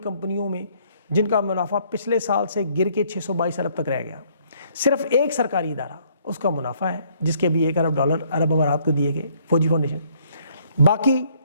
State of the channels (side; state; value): both; inverted; correlation -0.65